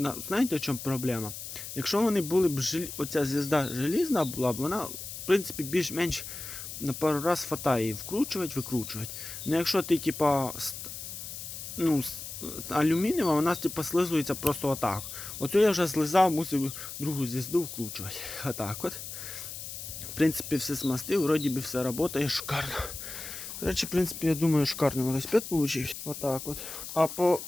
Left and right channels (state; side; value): noise; left; hiss, 9 dB below the sound